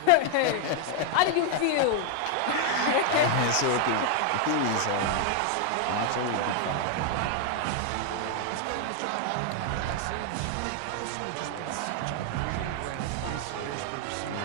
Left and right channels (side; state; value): both; different; correlation 0.00